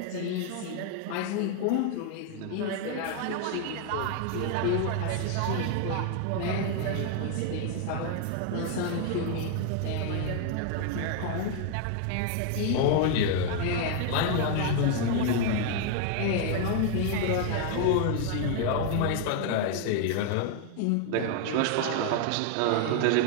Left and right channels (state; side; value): different; both; correlation 0.00